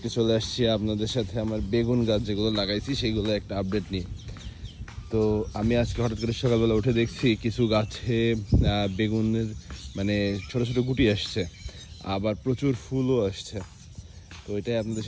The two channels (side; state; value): both; identical; correlation 1.00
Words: চলে আসছি আপনাদের সাথে আমার বেগুন গাছ যেগুলো লাগাইছি সেইগুলো একটা আপডেট নিয়ে। তো আমি আজকে হঠাৎ করে সকালবেলা উঠে দেখছি কিছু গাছে বেগুনের মানে ছোট ছোট গুটি আসছে, আবার প্রচুর ফুলও আসছে। তো এটাই আপনাদের